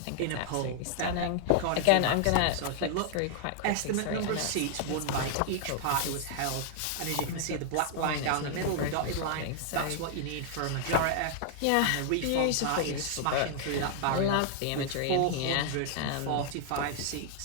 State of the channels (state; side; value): different; both; correlation 0.00